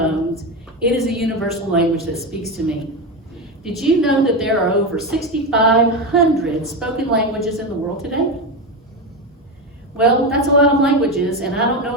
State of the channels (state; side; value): normal; both; correlation 0.15